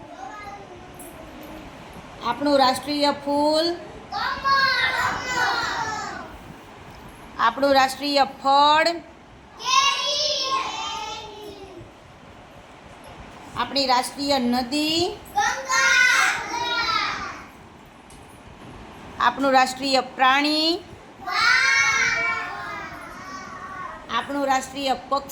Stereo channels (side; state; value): both; identical; correlation 1.00